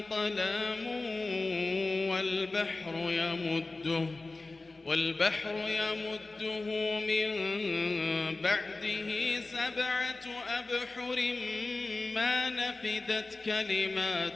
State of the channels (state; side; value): quieter; right; 3.3 dB